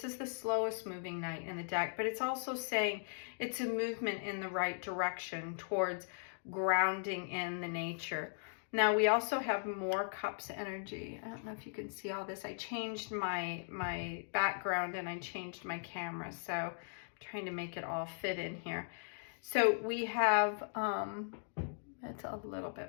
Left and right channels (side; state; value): right; silent; digital silence